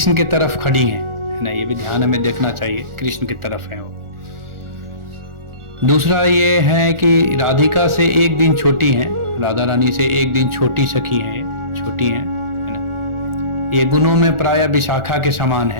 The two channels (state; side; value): late; left; 1.4 ms